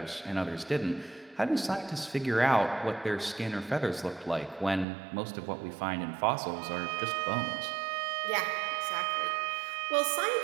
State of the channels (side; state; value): left; drops out; at 4.9 s